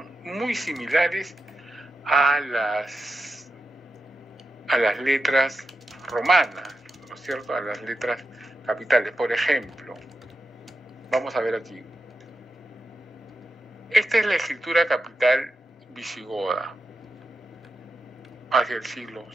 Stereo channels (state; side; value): normal; both; correlation 0.89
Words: muy similares a las letras romanas, ¿no es cierto? A las letras capitales. Por ejemplo, vamos a ver aquí. Esta es la escritura capital visigoda hacia el siglo